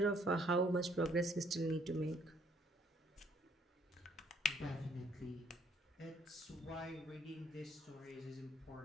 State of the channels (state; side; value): normal; both; correlation 0.64